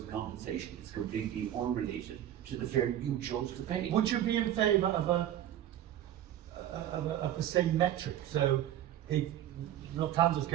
of compensation. It's completely unrelated to the fare you chose to pay. Would you be in favour of the same metric? So if Lufthansa is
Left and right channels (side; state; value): left; quieter; 11.8 dB